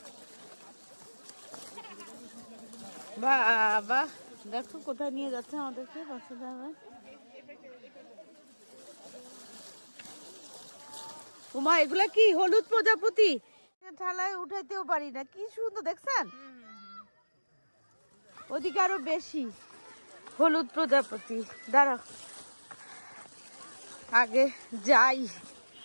বাবা, দেখো কোথায় নিয়ে যাচ্ছে আমাদেরকে বাচ্চাদের। আমার উমা, এগুলা কি হলুদ প্রজাপতি? ঠালায় উঠাইতেও পারি না, কি সুন্দর দেখছেন? ওদিকে আরো বেশি হলুদ প্রজাপতি। দাঁড়াও আগে যাই,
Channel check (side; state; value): both; inverted; correlation -1.00